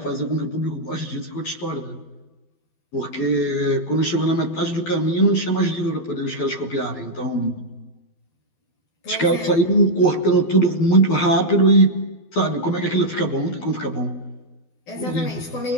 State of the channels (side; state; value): right; late; 12 ms